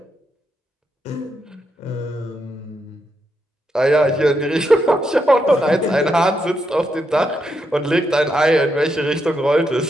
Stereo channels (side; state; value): both; normal; correlation 0.81